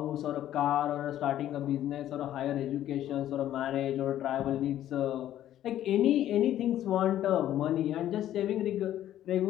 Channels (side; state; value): right; quieter; 12.2 dB